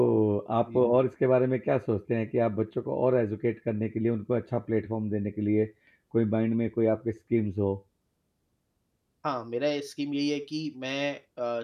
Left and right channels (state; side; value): identical; both; correlation 1.00